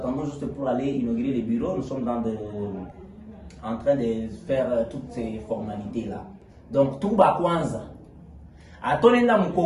juste pour aller inaugurer les bureaux. Nous sommes en train de faire toutes ces formalités-là. Donc, tout va Kwanza. À Tonenda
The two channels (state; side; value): identical; both; correlation 1.00